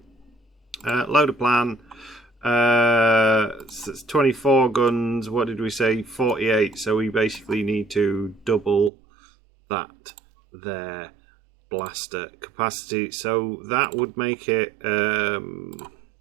Load a plan. It's 24 guns. What did we say? 48. So we basically need to double that there blaster capacity. So that would make it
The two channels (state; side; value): drops out; left; at 8.9 s